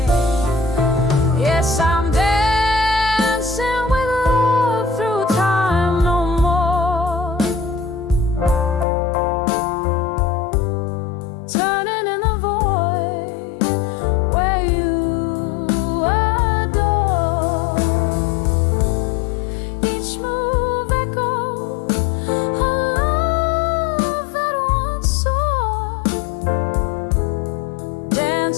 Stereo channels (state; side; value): drops out; right; at 8.8 s